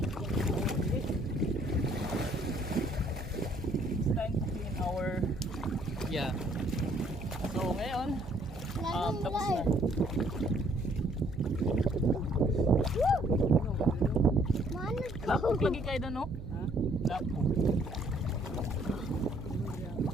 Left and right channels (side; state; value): right; noise; hum, 13 dB below the sound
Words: It's time to clean our So ngayon tapos na. Lapok lagi kayo doon, no? Lapok.